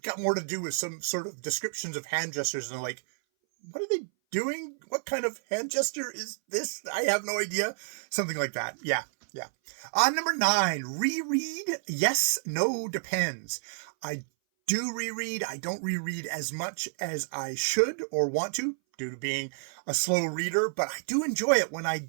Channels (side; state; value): left; silent; 58 dB below the other